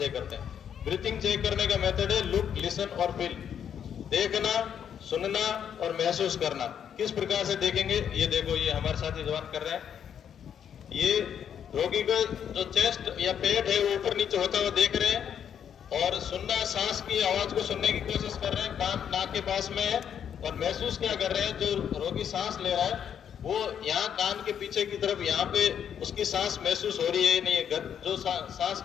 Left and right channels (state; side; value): quieter; right; 8.5 dB